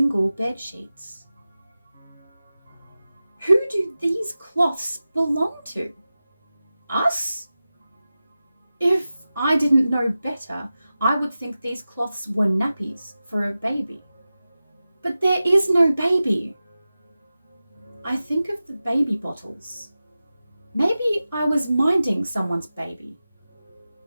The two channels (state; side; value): inverted; both; correlation -0.95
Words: bed sheets? Who do these cloths belong to? Us? If I didn't know better, I would think these cloths were nappies for a baby. But there is no baby. I think of the baby bottles. Maybe I was minding someone's baby.